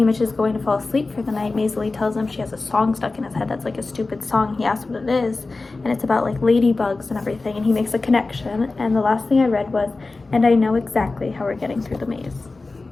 is going to fall asleep for the night, Maisily tells him she has a song stuck in his head that's like a stupid song. He asks what it is, and it's about like ladybugs and everything, and he makes a connection. And the last thing I read was, and I know exactly how we're getting through the maze.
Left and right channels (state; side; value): quieter; right; 3.5 dB